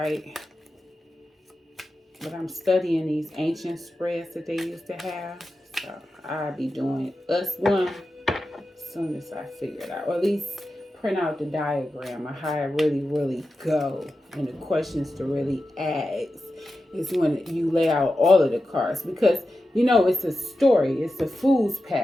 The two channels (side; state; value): both; normal; correlation 0.92